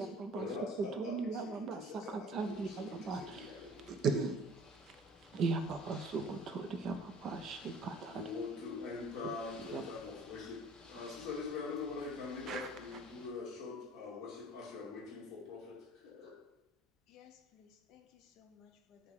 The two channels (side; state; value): both; normal; correlation 0.50